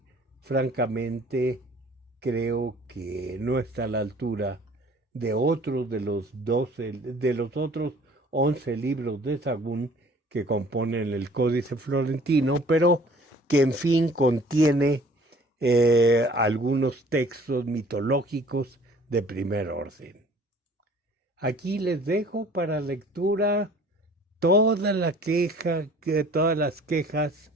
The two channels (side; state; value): both; normal; correlation 0.52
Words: francamente creo que no está a la altura de otros de los otros 11 libros de Sagún que componen el Códice Florentino, pero que en fin contiene algunos textos mitológicos de primer orden. Aquí les dejo para lectura todas las quejas